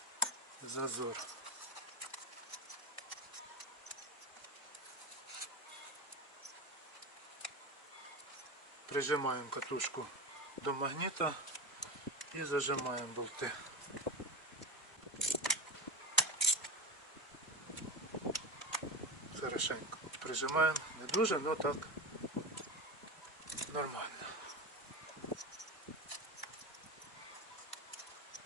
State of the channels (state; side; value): normal; both; correlation 0.21